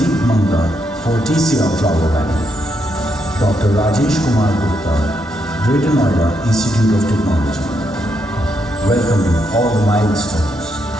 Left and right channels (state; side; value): normal; both; correlation 0.79